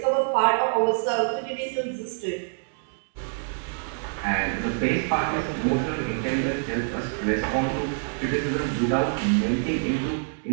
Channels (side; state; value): left; silent; 61 dB below the other